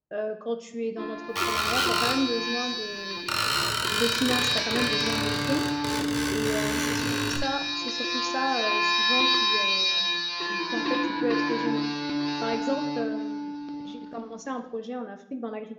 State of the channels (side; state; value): both; identical; correlation 1.00